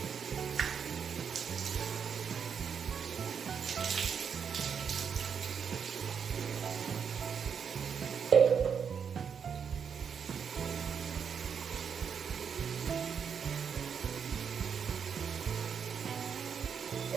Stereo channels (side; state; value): left; quieter; 7.0 dB